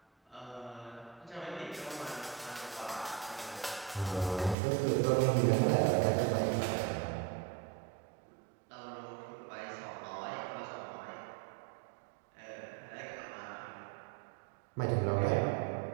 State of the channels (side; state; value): left; drops out; at 4.5 s